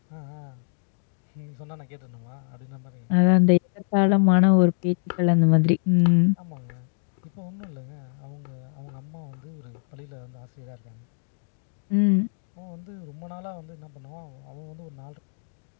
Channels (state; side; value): silent; right; digital silence